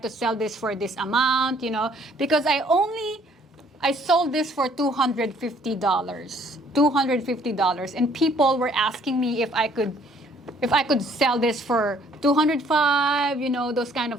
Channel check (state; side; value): normal; both; correlation 0.61